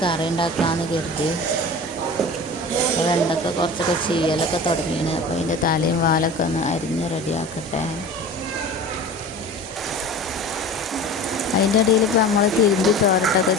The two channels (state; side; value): normal; both; correlation 0.37